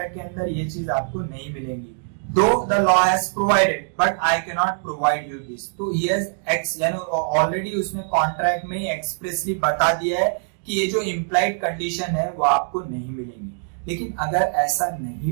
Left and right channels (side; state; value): left; silent; digital silence